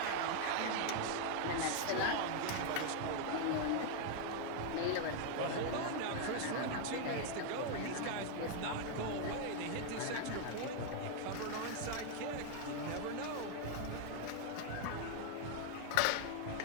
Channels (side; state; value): both; different; correlation 0.00